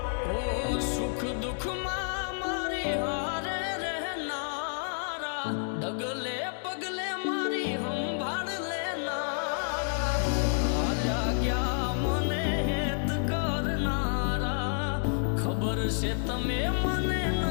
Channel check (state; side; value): silent; right; digital silence